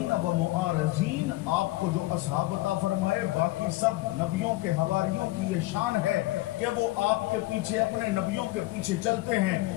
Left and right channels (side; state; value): right; quieter; 19.2 dB